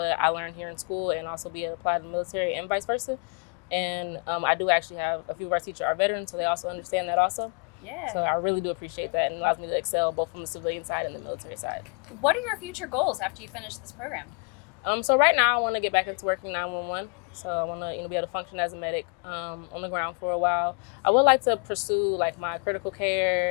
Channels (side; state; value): right; quieter; 36.3 dB